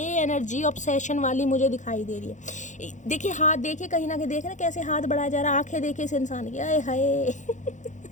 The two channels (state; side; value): late; right; 0.35 ms